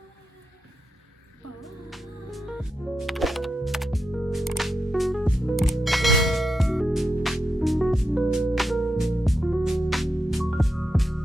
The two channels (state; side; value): normal; both; correlation 0.87